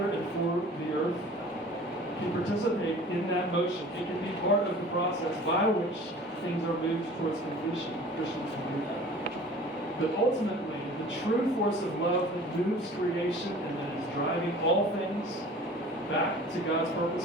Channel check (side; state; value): both; normal; correlation 0.44